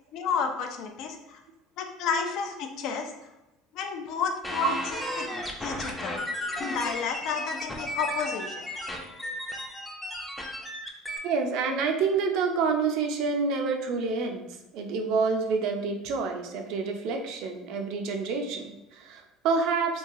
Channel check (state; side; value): normal; both; correlation 0.35